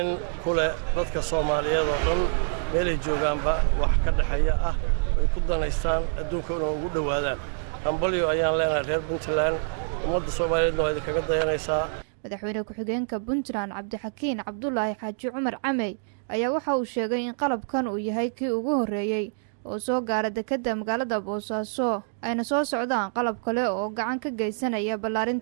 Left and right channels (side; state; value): left; silent; digital silence